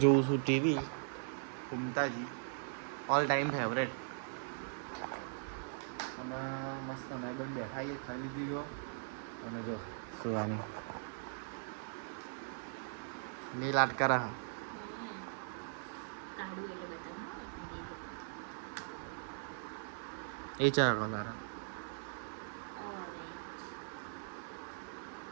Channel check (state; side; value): silent; left; digital silence